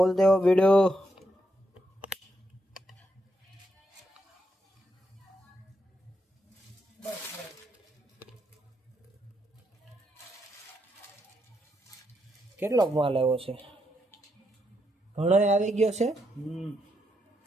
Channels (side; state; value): both; normal; correlation 0.80